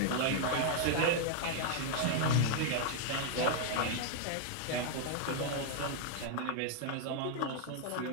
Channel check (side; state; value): both; different; correlation 0.00